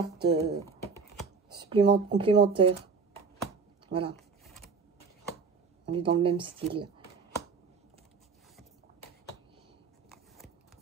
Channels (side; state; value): left; quieter; 4.9 dB